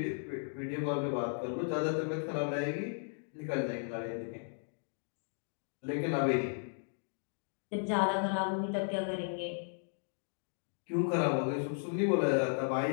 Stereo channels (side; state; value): right; silent; digital silence